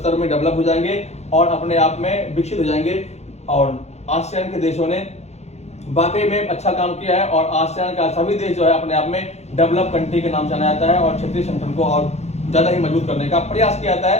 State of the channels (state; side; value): late; right; 0.32 ms